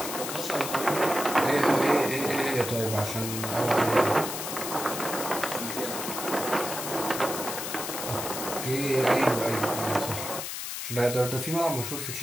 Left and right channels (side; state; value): left; noise; hiss, 5 dB below the sound